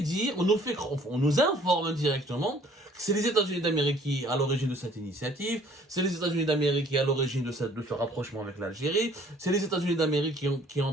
informe indirectement que c'est les États-Unis d'Amérique qui sont à l'origine de cette initiative, c'est les États-Unis d'Amérique qui sont à l'origine de ce rapprochement avec l'Algérie, c'est les États-Unis d'Amérique qui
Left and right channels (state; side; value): normal; both; correlation 0.57